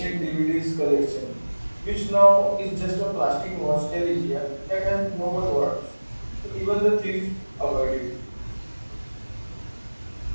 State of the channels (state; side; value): inverted; both; correlation -1.00